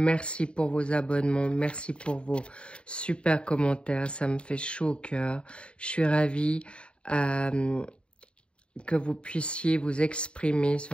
pour vos abonnements, merci pour vos super commentaires, ça me fait chaud au cœur. Je suis ravie que vous puissiez vous exprimer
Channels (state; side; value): late; right; 0.055 ms